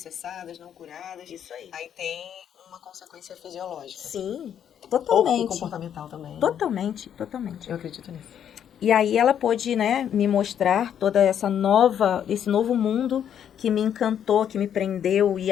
não curadas. Isso aí. Aí tem uma consequência fisiológica. Sim, Ou totalmente. comportamental também. Né? Totalmente. Eu acredito nisso. E aí ela pôde, né, me mostrar toda esse novo mundo que me encantou, que me prendeu. E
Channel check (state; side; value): quieter; right; 9.2 dB